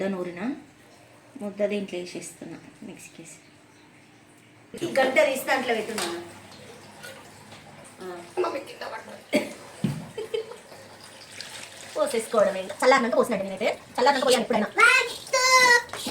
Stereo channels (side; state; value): both; identical; correlation 1.00